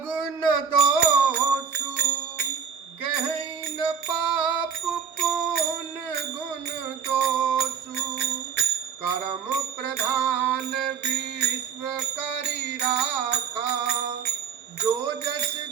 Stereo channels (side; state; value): left; quieter; 6.8 dB